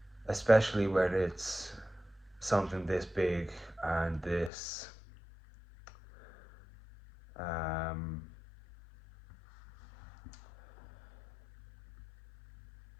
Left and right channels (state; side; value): drops out; right; at 4.5 s